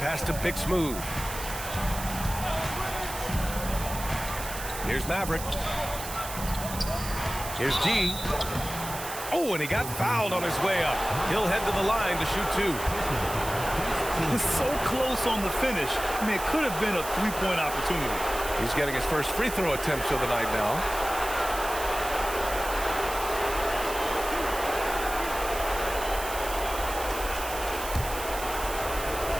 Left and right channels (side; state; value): right; noise; hiss, 9 dB below the sound